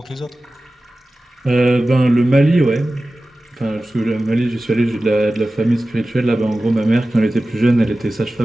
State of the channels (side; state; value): both; normal; correlation 0.96